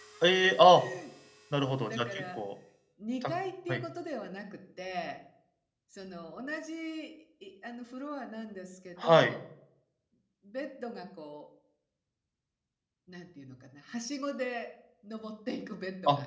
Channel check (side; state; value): both; identical; correlation 1.00